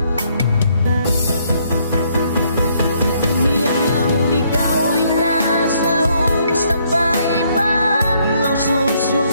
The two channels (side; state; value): both; inverted; correlation -0.69